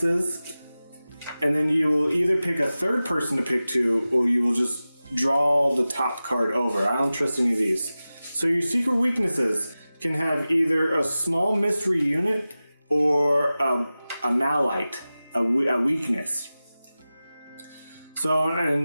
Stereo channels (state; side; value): inverted; both; correlation -0.96